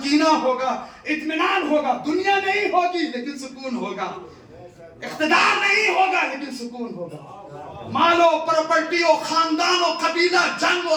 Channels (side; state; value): both; identical; correlation 1.00